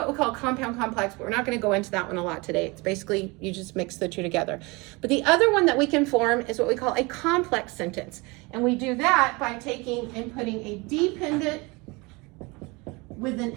we call compound complex, but we're not going to go into that one a lot today. It's basically you just mix the two together. But the other one that we can form is what we call a complex sentence. And we do that by taking and putting a dependent with an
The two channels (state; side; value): quieter; left; 25.9 dB